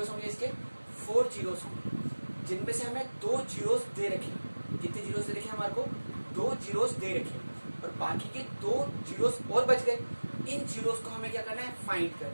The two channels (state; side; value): inverted; both; correlation -1.00